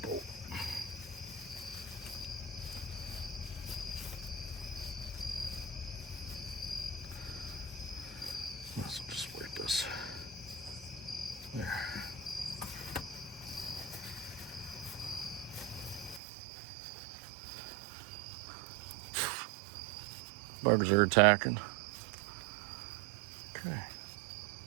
bolt. Might as well just wipe this. There. Bugs are attacking. Okay.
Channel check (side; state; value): left; drops out; at 16.2 s